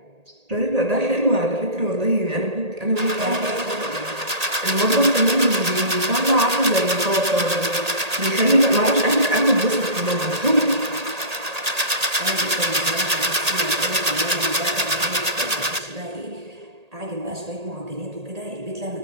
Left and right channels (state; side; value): late; left; 1.8 ms